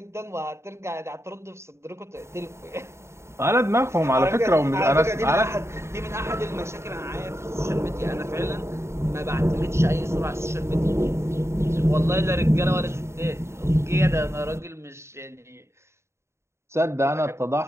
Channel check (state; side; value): late; left; 0.13 ms